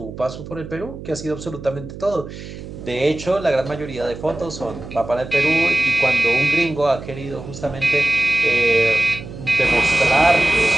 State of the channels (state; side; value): noise; right; hum, 12 dB below the sound